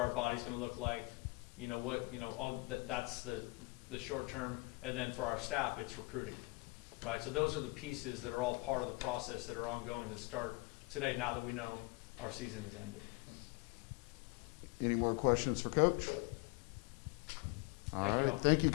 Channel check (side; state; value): right; quieter; 25.7 dB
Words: bodies going to look like? That's the short term. And then for our staff, it's recruiting. Right, so those are the pieces that are all part of the process that are ongoing that start today, now that we know our season has ended. Any more questions for Coach? Thank you all. Thank you,